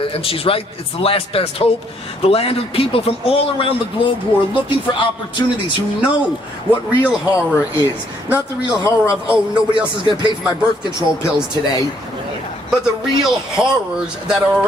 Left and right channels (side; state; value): both; normal; correlation 0.68